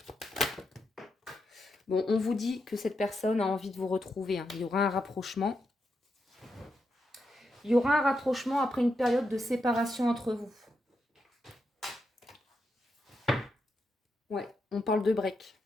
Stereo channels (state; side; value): normal; both; correlation 0.84